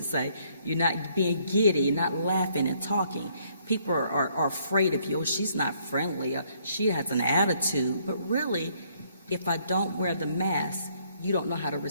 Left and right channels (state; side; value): inverted; both; correlation -0.67